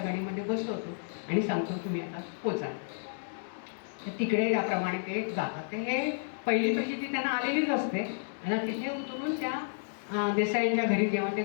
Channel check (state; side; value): silent; right; digital silence